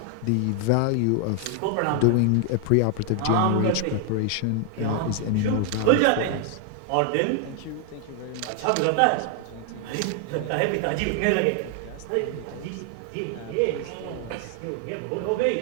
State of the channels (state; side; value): different; both; correlation 0.00